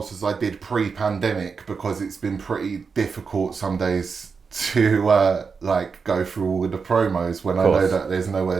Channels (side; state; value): left; quieter; 5.3 dB